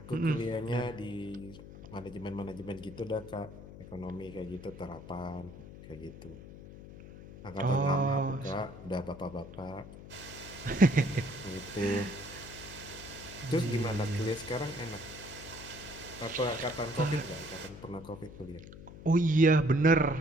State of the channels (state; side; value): noise; left; hum, 15 dB below the sound